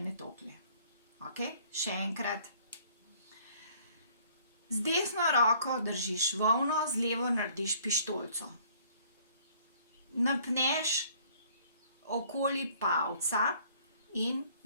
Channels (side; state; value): both; inverted; correlation -0.58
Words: tolikle. Okej, še enkrat. Z desno roko držiš volno, z levo narediš pištolico. Napneš okoli palca in